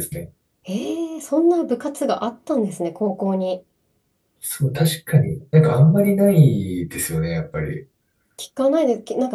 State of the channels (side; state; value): both; identical; correlation 1.00